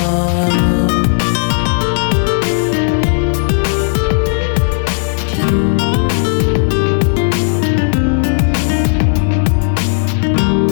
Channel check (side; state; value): right; silent; digital silence